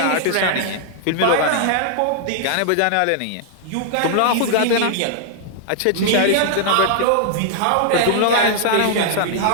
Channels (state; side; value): different; both; correlation -0.01